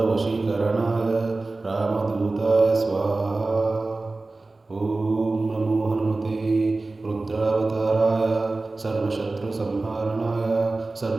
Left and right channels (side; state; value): left; quieter; 3.3 dB